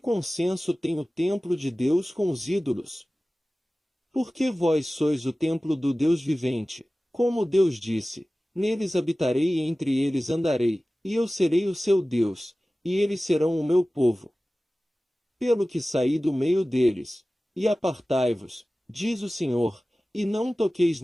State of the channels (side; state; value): both; normal; correlation 0.97